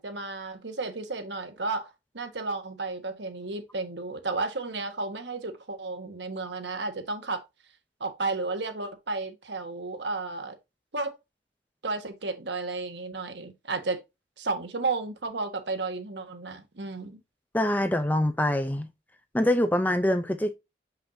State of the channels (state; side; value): normal; both; correlation 0.27